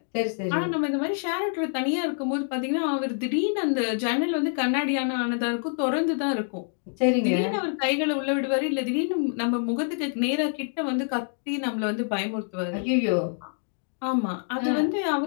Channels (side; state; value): right; silent; 61 dB below the other